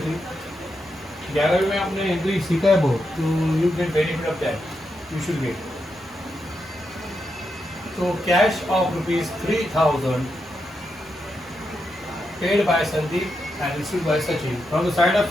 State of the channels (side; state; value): both; normal; correlation 0.84